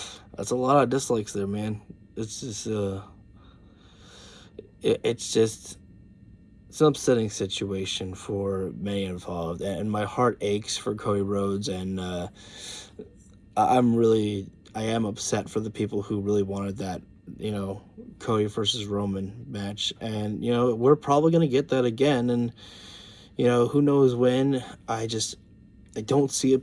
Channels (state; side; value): identical; both; correlation 1.00